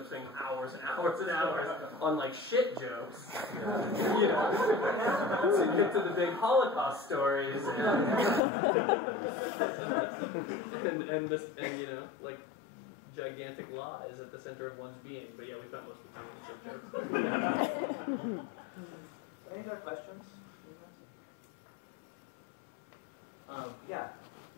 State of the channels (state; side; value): drops out; right; at 8.4 s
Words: spending hours and hours and hours on shit jokes, to get to the big Holocaust stories and gigantic lies at the center of one's being. But yeah, we spent most of the time on the shit jokes. Any other questions? Yeah.